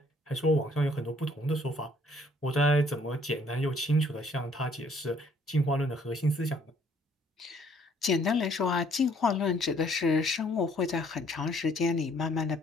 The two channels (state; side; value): normal; both; correlation 0.62